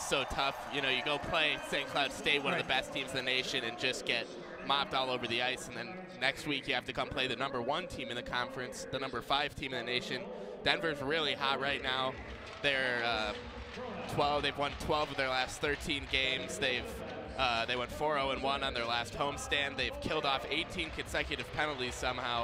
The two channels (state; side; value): identical; both; correlation 1.00